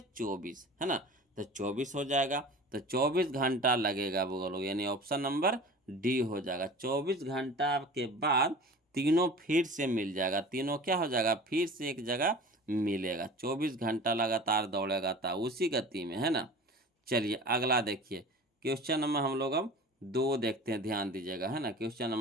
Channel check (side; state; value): both; normal; correlation 0.39